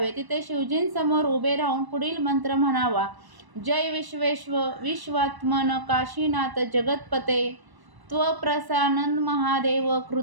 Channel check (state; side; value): late; left; 1.0 ms